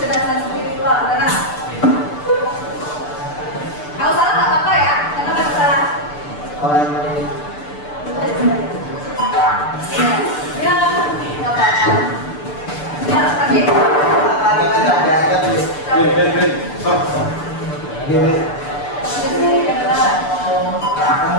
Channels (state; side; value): late; right; 6.8 ms